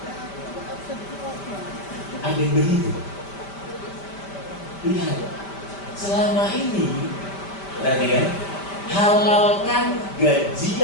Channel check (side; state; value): right; late; 5.1 ms